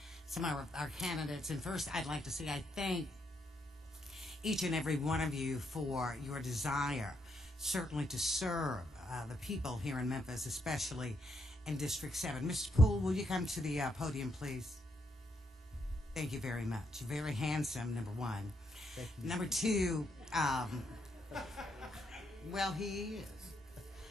some of our candidates. And first, I'd like to say I thank each and every one of you for your desire, certainly to serve the people here in Memphis, especially in District 7. Mr. Poole, will you come to the podium, please? Thank you very much. Very handsome, number one. Thank you. Number two, well, he is.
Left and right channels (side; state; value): both; normal; correlation 0.77